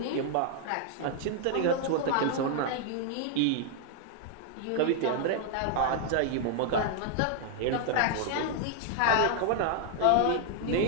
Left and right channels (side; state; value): both; different; correlation 0.00